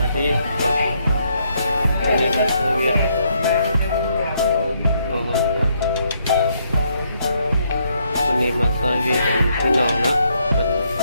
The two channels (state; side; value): inverted; both; correlation -0.73